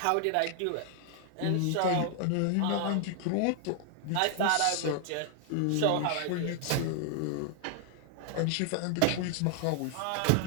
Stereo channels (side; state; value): both; different; correlation 0.00